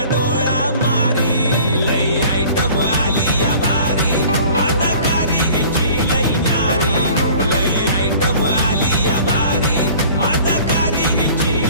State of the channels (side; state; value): both; inverted; correlation -0.47